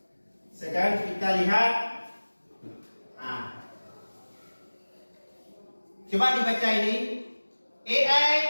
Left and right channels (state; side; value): inverted; both; correlation -1.00